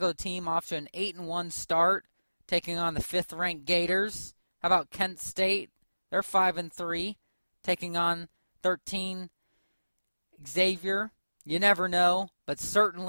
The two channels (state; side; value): inverted; both; correlation -1.00